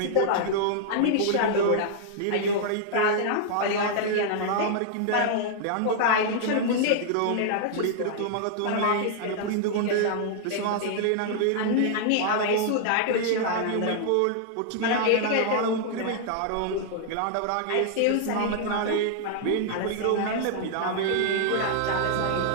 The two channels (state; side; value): different; both; correlation -0.01